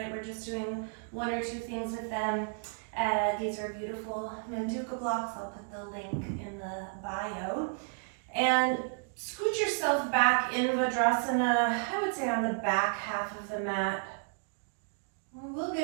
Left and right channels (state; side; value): silent; left; 56 dB below the other